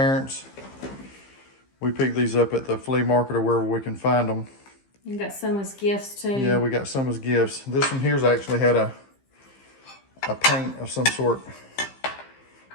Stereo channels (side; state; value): right; late; 15 ms